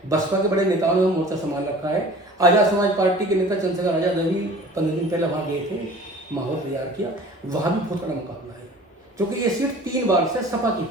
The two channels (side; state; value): both; normal; correlation 0.44